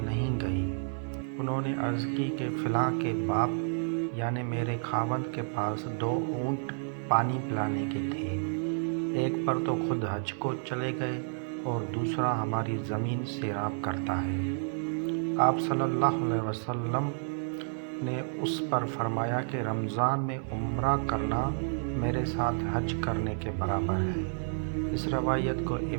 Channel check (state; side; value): silent; left; digital silence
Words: نہیں گئی؟ انہوں نے عرض کی کہ فلاں کے باپ یعنی میرے خاوند کے پاس 2 اونٹ پانی پلانے کے تھے، ایک پر تو خود حج کو چلے گئے اور دوسرا ہماری زمین سیراب کرتا ہے۔ آپ صلی اللہ علیہ وسلم نے اس پر فرمایا کہ رمضان میں عمرہ کرنا میرے ساتھ حج کرنے کے برابر ہے۔ اس روایت کو